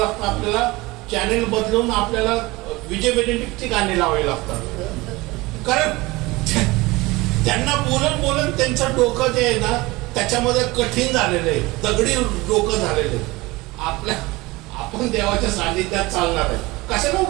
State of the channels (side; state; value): left; quieter; 21.7 dB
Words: आपल्याला चॅनेल बदलून आपल्याला विजय बेनेडिक्टची गाणी लावावी लागतात. कारण त्यांना बोलून त्यांचं डोकं जे आहे ना त्याच्यामध्ये कठीण झालेलं आहे, दगडी डोकं झालेलं आहे. आपण देवाच्या सानिध्यात चालणार आहे. कशाला